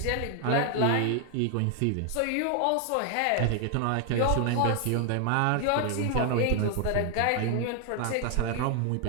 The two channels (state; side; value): different; both; correlation 0.00